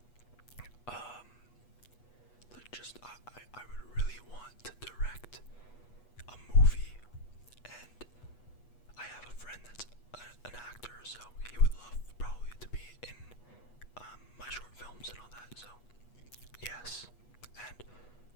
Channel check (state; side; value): late; right; 8.2 ms